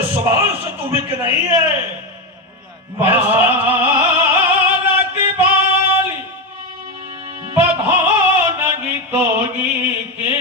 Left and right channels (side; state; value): both; normal; correlation 0.12